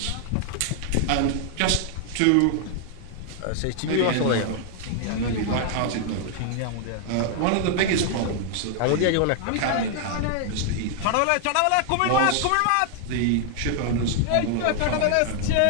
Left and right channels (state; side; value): different; both; correlation 0.00